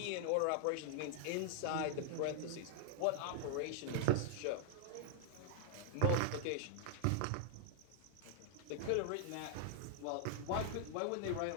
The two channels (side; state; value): both; different; correlation -0.01